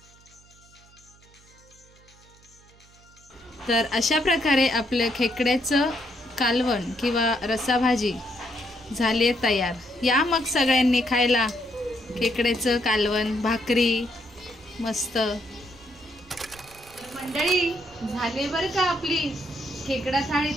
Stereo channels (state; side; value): noise; right; hum, 27 dB below the sound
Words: तर अशा प्रकारे आपलं खेकड्याचं कालवण किंवा रस्साभाजी झाली आहे तयार. या मग सगळ्यांनी खायला खेकड्याचं कालवण, भाकरी मस्त. मंडळी झाले बरं का आपली खेकडा थाळी